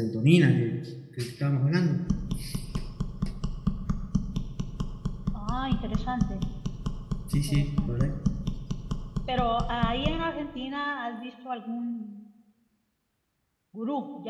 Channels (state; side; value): identical; both; correlation 1.00